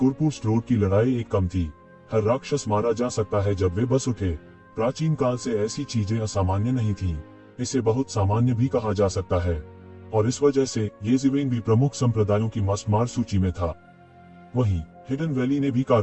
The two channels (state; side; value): identical; both; correlation 1.00